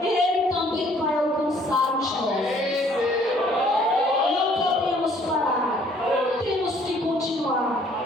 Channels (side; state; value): both; normal; correlation 0.60